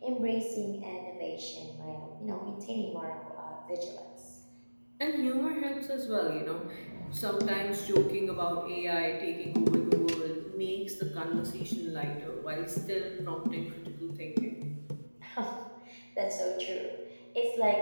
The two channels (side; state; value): both; inverted; correlation -1.00